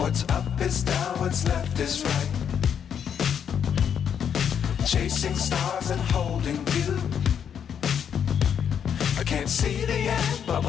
What's up is down, what's left is right. Chasing stars and holding you. I can't see the end, but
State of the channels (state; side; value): quieter; right; 8.1 dB